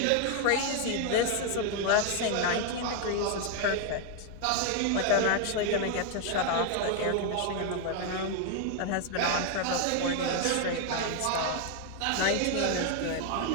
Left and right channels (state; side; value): different; both; correlation 0.01